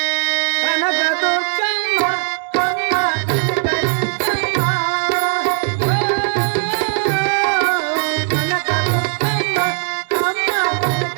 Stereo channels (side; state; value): left; silent; digital silence